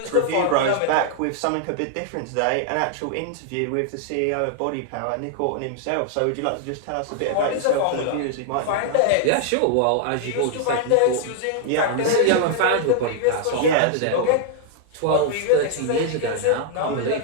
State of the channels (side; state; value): both; different; correlation 0.00